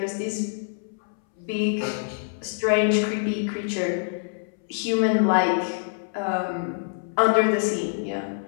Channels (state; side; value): silent; right; 61 dB below the other